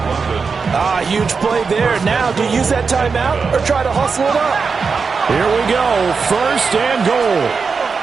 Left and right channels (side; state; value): left; quieter; 5.1 dB